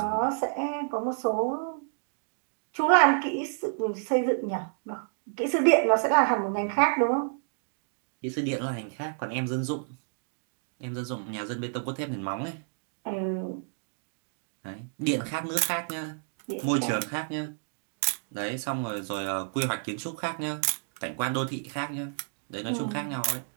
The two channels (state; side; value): silent; left; 58 dB below the other